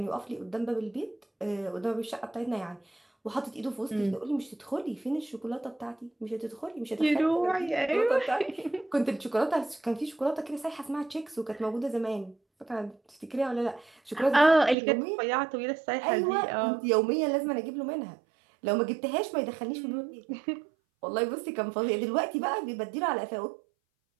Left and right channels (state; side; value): drops out; left; at 14.8 s